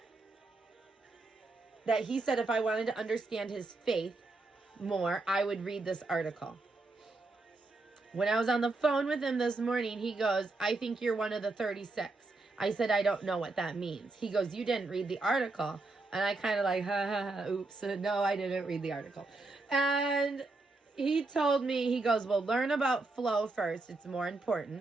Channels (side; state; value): left; quieter; 3.3 dB